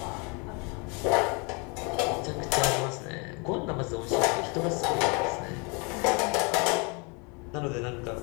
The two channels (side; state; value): right; quieter; 32.0 dB